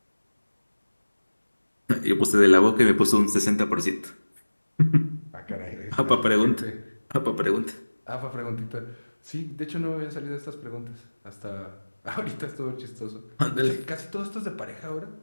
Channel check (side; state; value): both; inverted; correlation -1.00